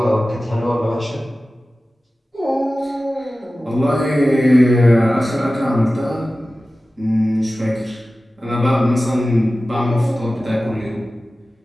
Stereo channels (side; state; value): both; normal; correlation 0.96